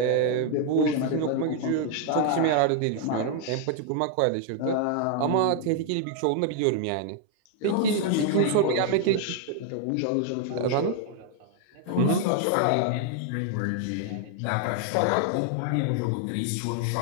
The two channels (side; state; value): both; different; correlation 0.00